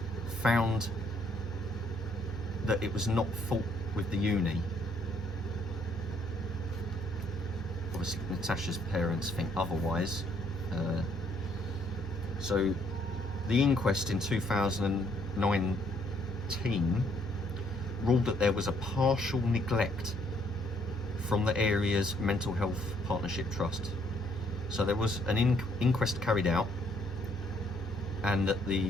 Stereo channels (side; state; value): both; normal; correlation 0.68